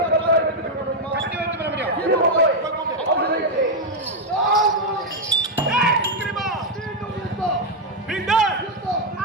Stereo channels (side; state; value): both; normal; correlation 0.01